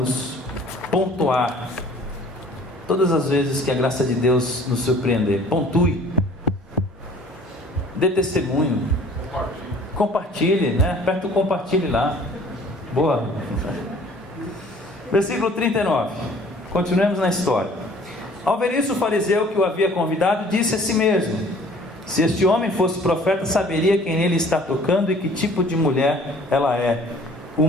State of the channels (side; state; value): both; normal; correlation 0.52